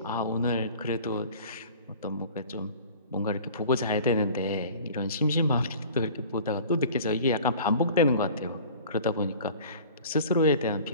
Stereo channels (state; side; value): inverted; both; correlation -0.44